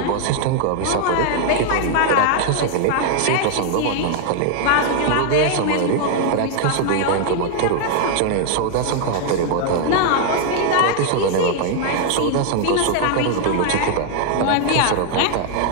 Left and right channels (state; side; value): different; both; correlation 0.00